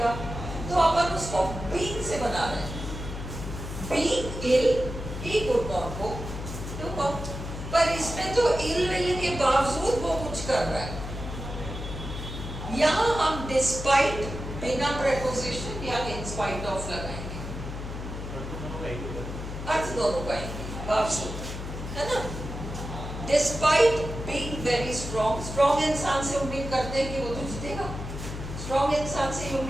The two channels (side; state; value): left; noise; hum, 7 dB below the sound